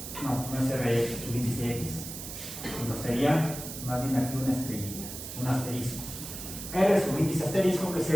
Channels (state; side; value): noise; right; hiss, 9 dB below the sound